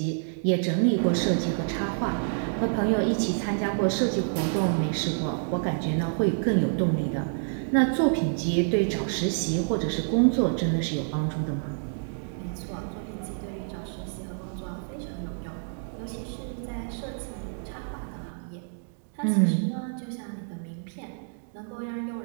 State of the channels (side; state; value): left; silent; digital silence